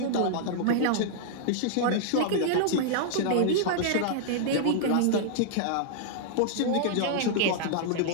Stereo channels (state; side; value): different; both; correlation -0.01